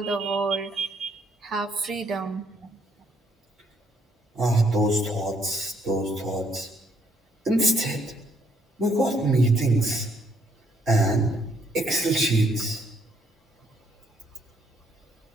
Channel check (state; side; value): normal; both; correlation 0.69